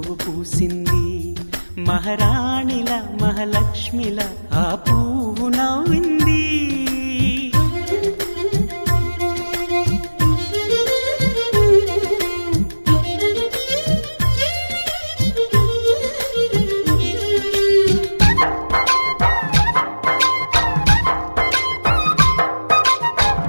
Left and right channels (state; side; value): inverted; both; correlation -1.00